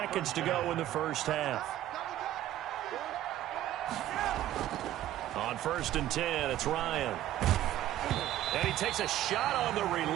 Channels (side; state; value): left; quieter; 13.2 dB